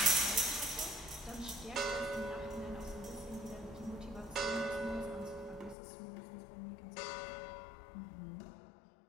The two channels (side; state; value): right; drops out; at 5.8 s